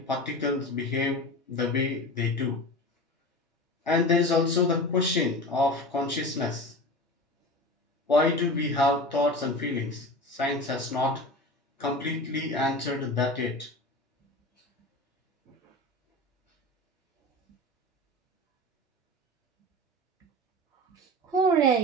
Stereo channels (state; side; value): normal; both; correlation 0.31